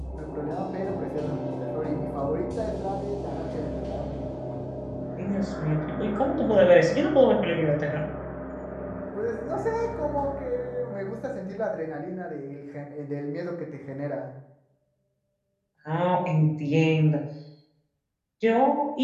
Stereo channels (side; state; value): both; identical; correlation 1.00